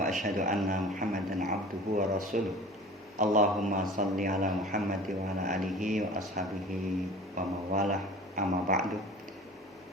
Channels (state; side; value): normal; both; correlation 0.41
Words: asyhadu anna Muhammadan abduhu wa rasuluh. Allahumma shalli ala Muhammad wa ala alihi wa ashabihi wa mawalah, amma ba'du.